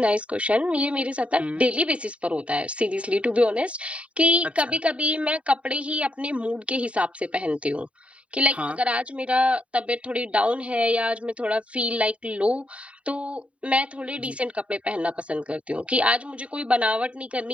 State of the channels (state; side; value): late; left; 0.063 ms